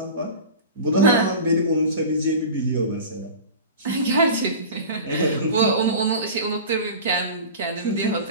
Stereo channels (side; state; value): both; inverted; correlation -0.34